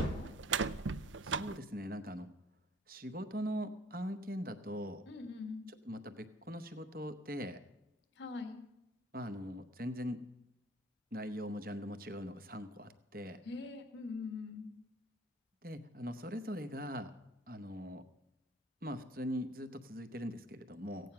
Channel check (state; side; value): normal; both; correlation 0.55